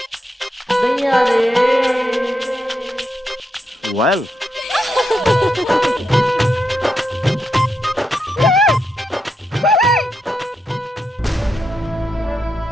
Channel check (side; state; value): both; normal; correlation 0.83